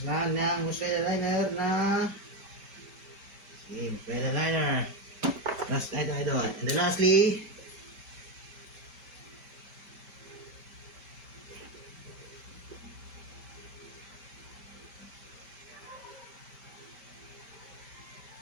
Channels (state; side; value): late; left; 5.1 ms